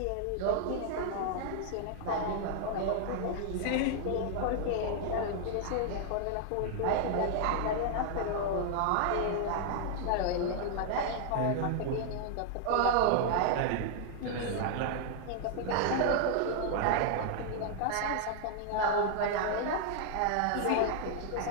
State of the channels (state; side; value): different; both; correlation 0.00